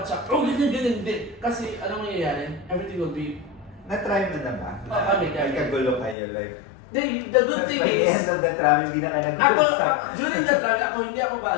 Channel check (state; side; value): drops out; right; at 6.2 s